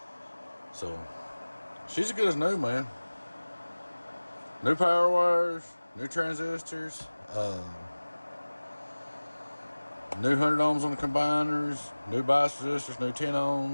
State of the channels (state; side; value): inverted; both; correlation -1.00